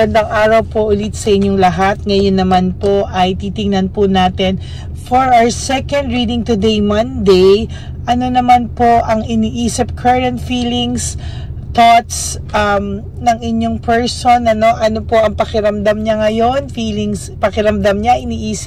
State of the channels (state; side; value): identical; both; correlation 1.00